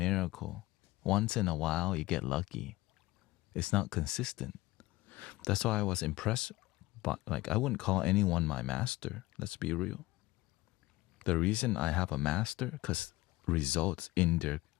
Once in a while, you get lucky. It's not consistent. That's why I was impressed. But like, I wouldn't call anyone my master. Let's be real. The reason I have a master, because results in their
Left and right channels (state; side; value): quieter; right; 19.1 dB